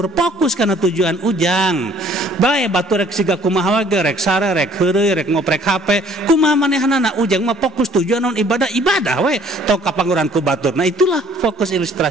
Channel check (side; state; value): both; normal; correlation 0.57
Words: fokus kana tujuan ujang. Bae batur rek siga kumaha wae rek sare rek heureuy rek ngoprek HP, kumaha manehanana ujang mah fokus tujuan naon ibadah we. Tong kapanguran ku batur. Nah, itulah fokus